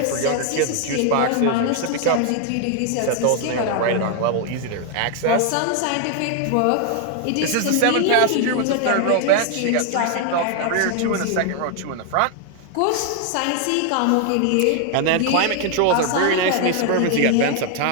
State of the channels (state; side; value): different; both; correlation 0.00